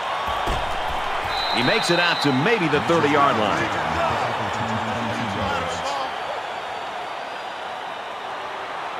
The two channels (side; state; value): both; identical; correlation 1.00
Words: He makes it out to maybe the 30-yard line.